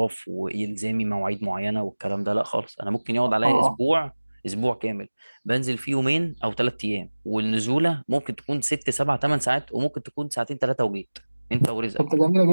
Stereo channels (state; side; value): inverted; both; correlation -1.00